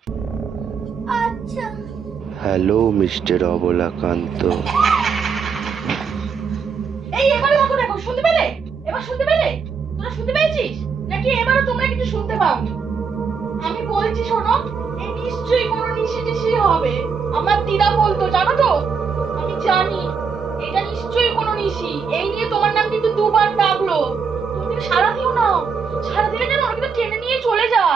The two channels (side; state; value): left; quieter; 5.8 dB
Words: আচ্ছা। Hello mister Abalakanta. এই এবারে দেখো শুনতে পেলে? এবার শুনতে পেলে? তোরা শুনতে পেয়েছিস নাকি এবারও তোমরা কিছু শুনতে পাওনি? আমি বলছি শোনো, এই নিশ্চয়ই কোনো নিশি হবে। আমার দিদা বলতো, জানো তো? আমি জানি এটা নিশ্চয়ই কোনো নিশি। এই নিয়ে তোমার নাম কিন্তু দুবার ডাকলো। তুমি কিন্তু সারা দিও না, সারা দিলে যেন ওরা কিন্তু টেনে নিয়ে চলে